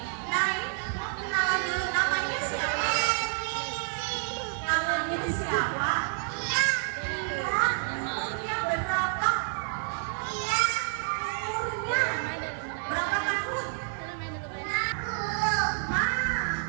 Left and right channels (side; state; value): left; silent; 58 dB below the other